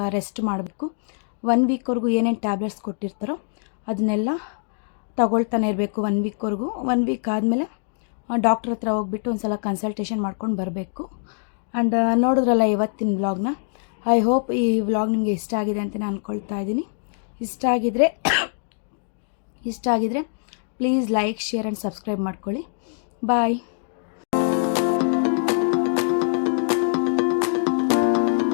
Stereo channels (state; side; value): silent; right; digital silence